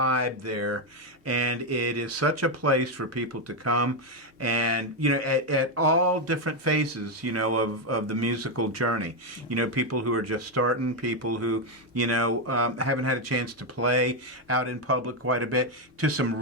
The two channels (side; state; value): both; normal; correlation 0.05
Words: there, and it is such a place for people to come and, at all different phases, of the musical journey. People who are just starting, people who, haven't had a chance to play out in public quite a bit, to